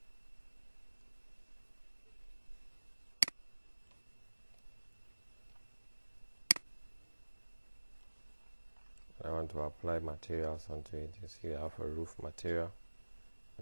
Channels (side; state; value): both; inverted; correlation -1.00